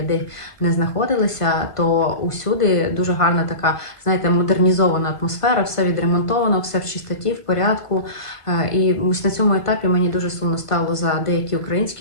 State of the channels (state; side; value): late; right; 1.5 ms